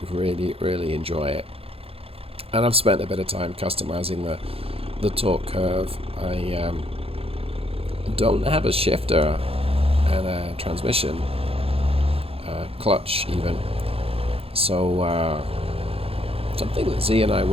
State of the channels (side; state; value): left; late; 0.28 ms